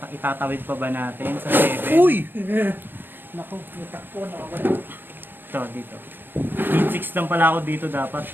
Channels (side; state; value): left; late; 0.095 ms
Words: itatawid pa ba natin sa 7? Uy! Naku, natakpo na ako. Ito, dito. Need 6 lang pala ako dito dapat.